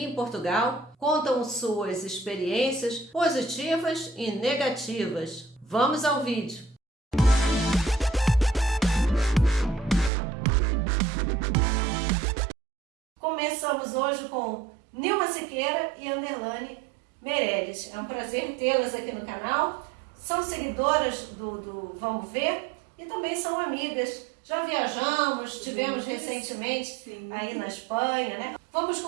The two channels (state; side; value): drops out; left; at 10.1 s